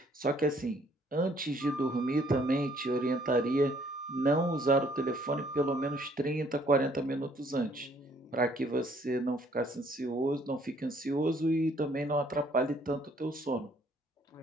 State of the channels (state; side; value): normal; both; correlation 0.63